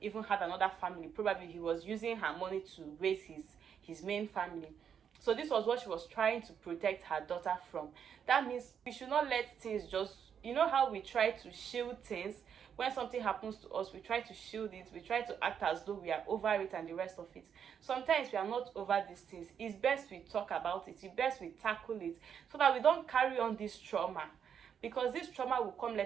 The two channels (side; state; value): left; quieter; 7.9 dB